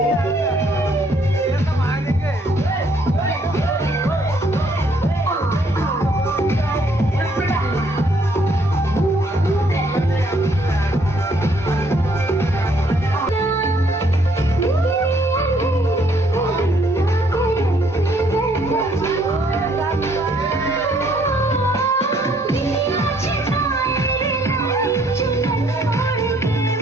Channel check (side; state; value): both; normal; correlation 0.66